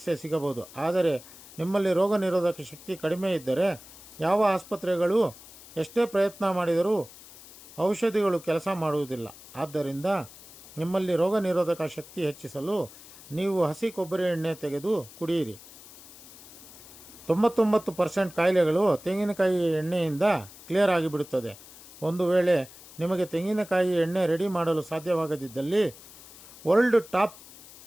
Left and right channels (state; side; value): noise; left; hiss, 19 dB below the sound